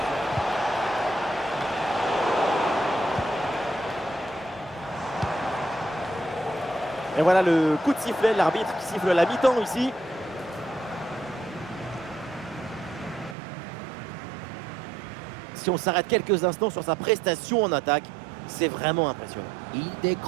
Et voilà le coup de sifflet, l'arbitre qui siffle la mi-temps ici. Si on s'arrête quelques instants sur sa prestation en attaque, c'est vraiment impressionnant. Il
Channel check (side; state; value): left; drops out; at 13.4 s